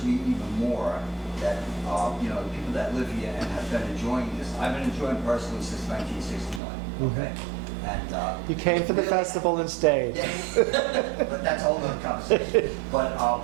me even more that, the people that live here and have been enjoying this, I've been enjoying personally since 1969, okay? And You came for the festival and stayed. but that's a whole other conversation. But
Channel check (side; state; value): left; drops out; at 6.6 s